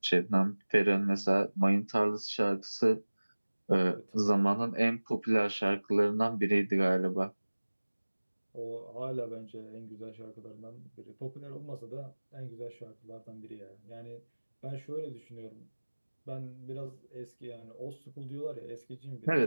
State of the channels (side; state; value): both; inverted; correlation -1.00